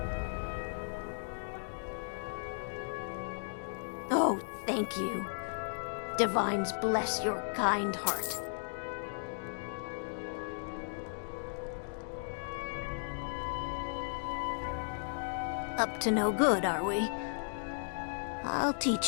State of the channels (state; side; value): silent; right; digital silence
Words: Oh, thank you. Divines bless your kind heart. Up to no good, are we? I'll